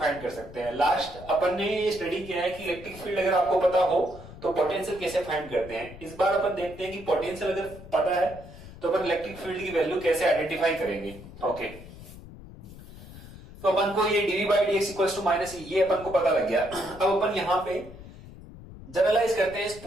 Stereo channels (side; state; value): left; noise; rumble, 16 dB below the sound